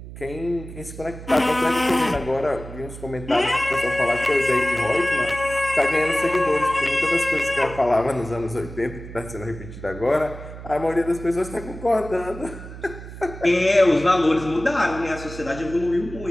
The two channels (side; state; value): right; noise; hum, 13 dB below the sound